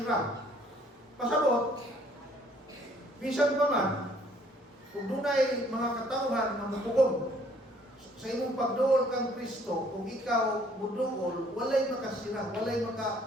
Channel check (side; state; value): both; normal; correlation 0.61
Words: Pasabot, bisan pa man, kung dunay mga katawhan na mupugong sa imong pagduol kang Kristo, kung ikaw muduol, walay makasira, walay